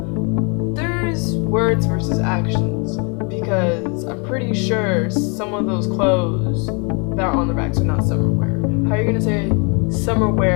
there's words versus actions, because I'm pretty sure some of those clothes that are on the racks are not summer wear. How are you gonna say summer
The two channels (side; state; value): right; quieter; 34.3 dB